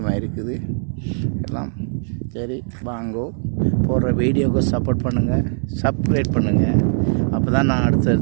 இருக்குது எல்லாம். சரி வாங்கோ, போடுற வீடியோவுக்கு சப்போர்ட் பண்ணுங்கள், சப்ஸ்கிரைப் பண்ணுங்கள். அப்போ தான் நான்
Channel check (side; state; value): left; silent; 65 dB below the other